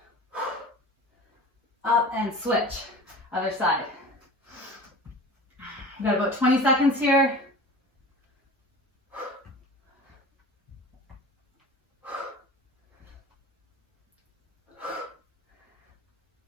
Up and switch. Other side. We've got about 20 seconds here.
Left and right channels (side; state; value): both; normal; correlation 0.38